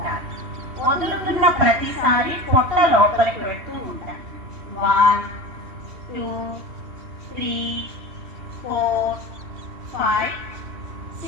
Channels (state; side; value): late; left; 3.2 ms